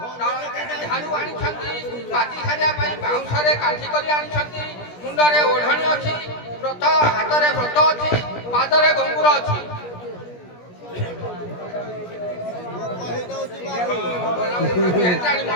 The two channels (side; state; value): right; late; 17 ms